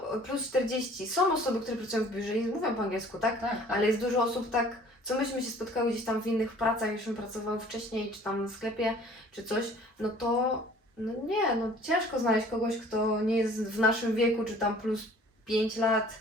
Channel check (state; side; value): normal; both; correlation 0.52